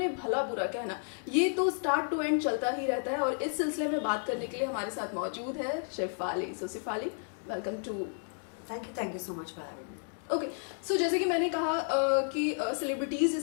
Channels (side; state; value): right; silent; 56 dB below the other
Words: भला बुरा कहना, ये तो स्टार्ट टू एंड चलता ही रहता है। और इस सिलसिले में बात करने के लिए हमारे साथ मौजूद है Shefali. So Shefali, welcome to. Thank you so much for having me. Okay. So जैसे कि मैंने कहा कि सेलिब्रिटीज़